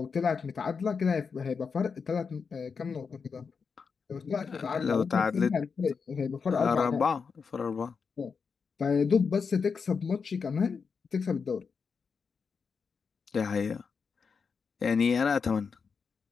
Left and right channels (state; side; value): quieter; right; 5.6 dB